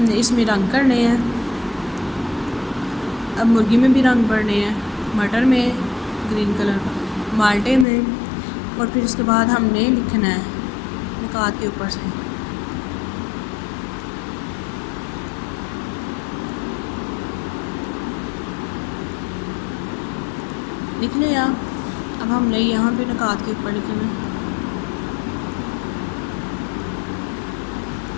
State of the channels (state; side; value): drops out; right; at 7.9 s